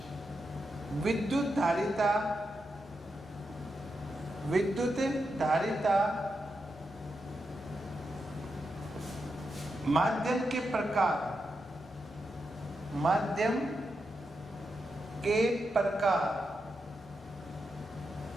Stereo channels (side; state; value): both; normal; correlation 0.86